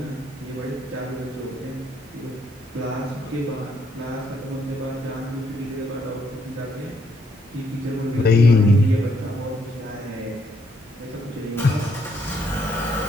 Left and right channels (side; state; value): both; normal; correlation 0.72